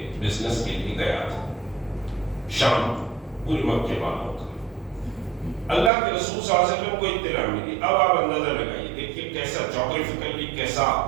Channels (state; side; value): drops out; left; at 5.9 s